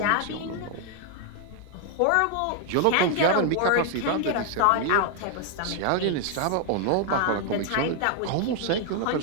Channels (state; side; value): different; both; correlation 0.00